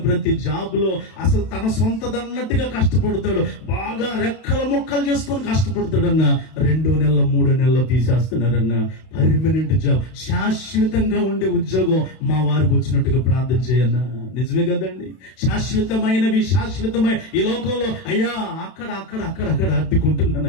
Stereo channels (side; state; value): right; late; 32 ms